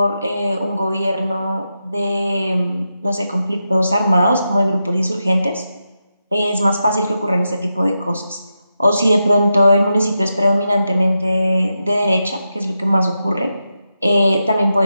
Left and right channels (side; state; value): both; inverted; correlation -0.87